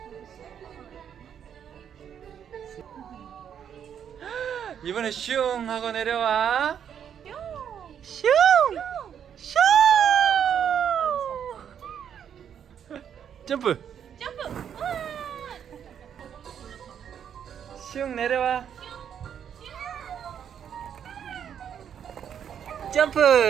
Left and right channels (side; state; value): left; quieter; 8.6 dB